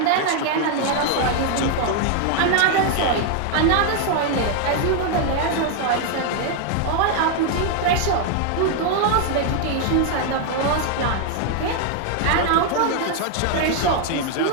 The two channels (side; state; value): both; different; correlation 0.00